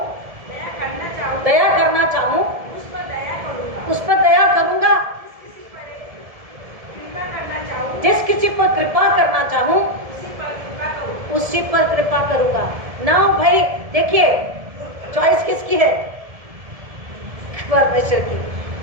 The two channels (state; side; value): late; left; 1.7 ms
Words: दया करना चाहूँ, उस पर दया करूंगा। जिस किसी पर कृपा करना चाहूँ उसी पर कृपा करूंगा। ना भाई देखिए, चॉइस किसकी है? परमेश्वर की।